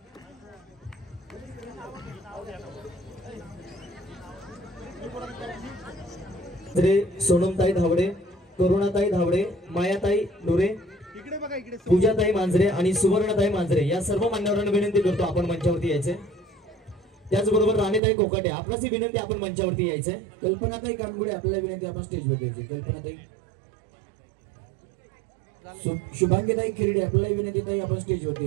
सोनमताई धावडे, करुणाताई धावडे, मायाताई डोरे, पूजाताई मांजरे आणि सुवर्णताई मांजरे या सर्व मान्यवरांना विनंती करतो आपण मंचावरती यायचे. त्याचबरोबर राणीताई कोकाटे आपणास विनंती आपण मंचावरती यायचे. कल्पनाताई कानगुडे आपल्याला विनंती आपण स्टेजवर यायचे. कल्पनाताई. शुभांगीताई खिरडे आपल्याला विनंती ताई आपण स्टेजवरती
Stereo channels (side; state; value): left; drops out; at 18.0 s